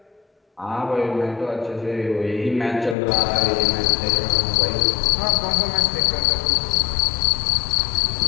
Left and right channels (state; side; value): drops out; right; at 3.0 s